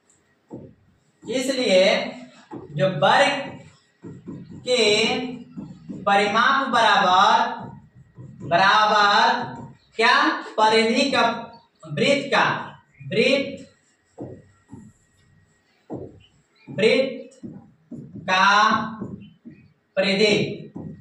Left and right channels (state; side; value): identical; both; correlation 1.00